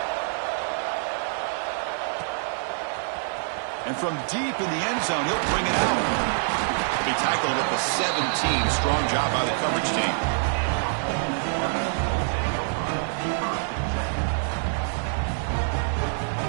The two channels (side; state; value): left; silent; 61 dB below the other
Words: And from deep in the end zone, he'll bring it out. He'll be tackled at the 17. Strong job by the coverage team.